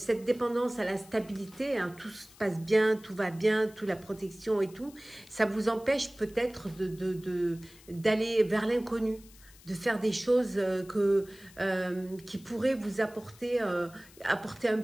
dépendance à la stabilité, hein, tout se passe bien, tout va bien, toute la protection et tout, ça vous empêche peut-être d'aller vers l'inconnu, de faire des choses qui pourraient vous apporter un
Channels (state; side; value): noise; left; hiss, 23 dB below the sound